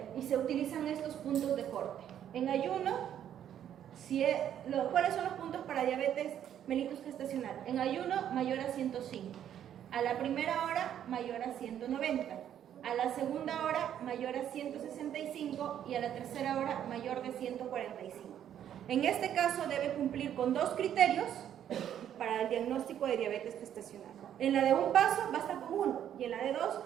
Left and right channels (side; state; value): left; quieter; 10.1 dB